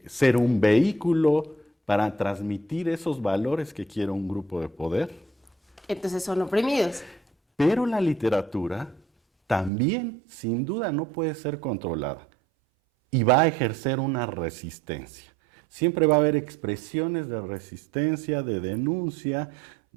ser un vehículo para transmitir esos valores que quiere un grupo de poder. Entonces son oprimidos. Pero la literatura también, sin duda, no puede ser controlada y va a ejercer una resistencia. Siempre va a haber expresiones de resistencia, de denuncia,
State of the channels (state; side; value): drops out; left; at 9.7 s